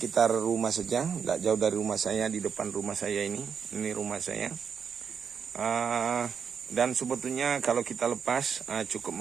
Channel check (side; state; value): left; quieter; 6.8 dB